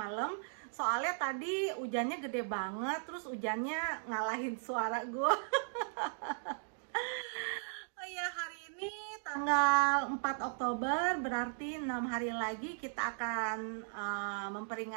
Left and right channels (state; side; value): silent; left; digital silence